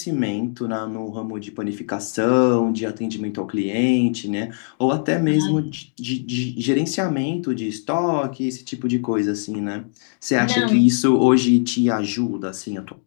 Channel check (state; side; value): silent; right; digital silence